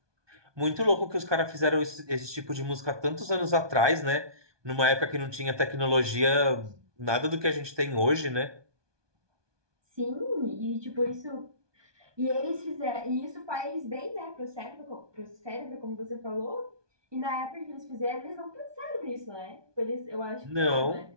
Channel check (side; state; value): left; late; 1.2 ms